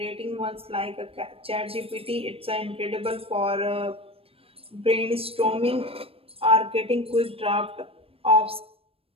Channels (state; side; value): late; left; 0.28 ms